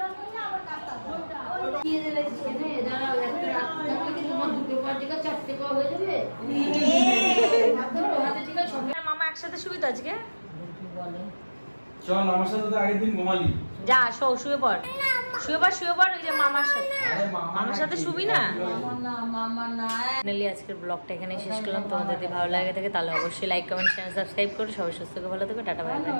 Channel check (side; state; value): both; inverted; correlation -1.00